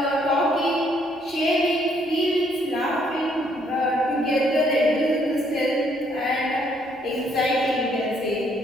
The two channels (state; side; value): normal; both; correlation 0.68